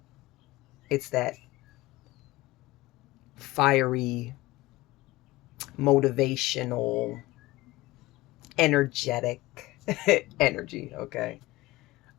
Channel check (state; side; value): quieter; right; 19.1 dB